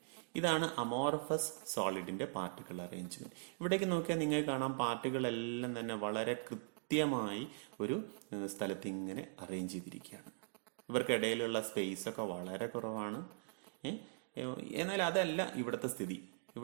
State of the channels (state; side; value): silent; left; digital silence